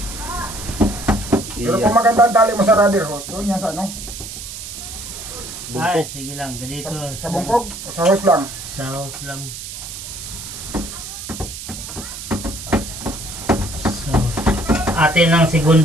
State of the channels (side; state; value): right; noise; hiss, 10 dB below the sound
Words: Pero kung maganda ang tali mo sa rubber hose, doon yan sa ano? Ay, sige lang. Ganito. Sa bungkog o sa hose lang? Sa house lang. So, atin ang